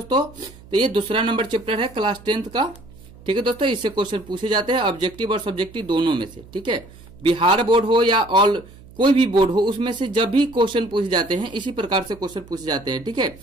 तो ये दूसरा नंबर चैप्टर है क्लास 10th का। ठीक है दोस्तों, इससे क्वेश्चन पूछे जाते हैं ऑब्जेक्टिव और सब्जेक्टिव दोनों में से। ठीक है, बिहार बोर्ड हो या ऑल कोई भी बोर्ड हो, उसमें से जब भी क्वेश्चन पूछे जाते हैं इसी प्रकार से क्वेश्चन पूछे जाते हैं। ठीक है,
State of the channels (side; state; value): right; noise; hum, 21 dB below the sound